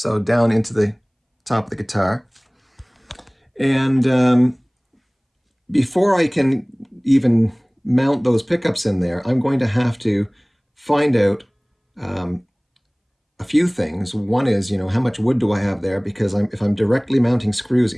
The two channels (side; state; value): both; identical; correlation 1.00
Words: down into the top of the guitar. And before I can even mount those pickups in there, I'm going to have to find out a few things. One is, how much wood do I have there? Because if I'm directly mounting screws